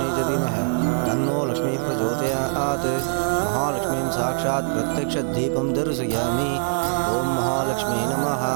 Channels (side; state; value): left; silent; digital silence